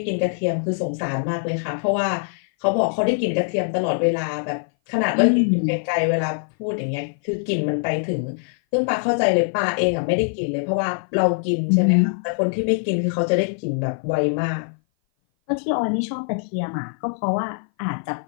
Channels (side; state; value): right; silent; 58 dB below the other